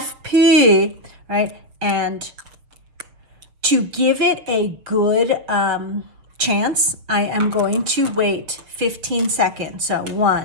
right? And to give it a good chance, I am going to wait 15 seconds. So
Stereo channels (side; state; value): left; late; 6.6 ms